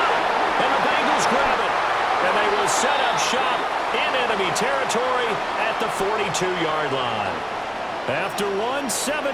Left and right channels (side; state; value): both; identical; correlation 1.00